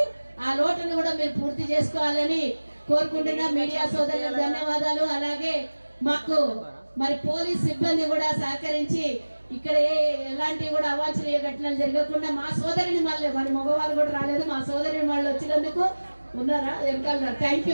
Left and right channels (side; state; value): both; inverted; correlation -1.00